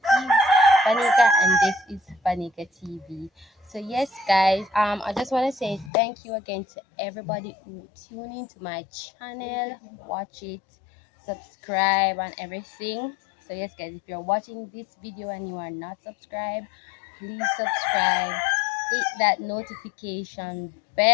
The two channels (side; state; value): right; drops out; at 5.9 s